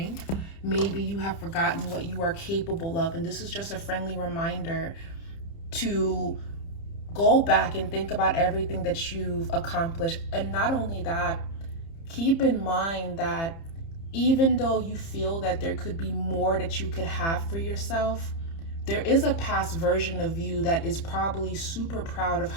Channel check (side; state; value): right; late; 30 ms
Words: Maybe you have forgotten what you are capable of. And this is just a friendly reminder to go back and think about everything that you've accomplished. And not only that, keep in mind that even though you feel that there could be more that you could have for yourself, there is a past version of you that is probably super proud of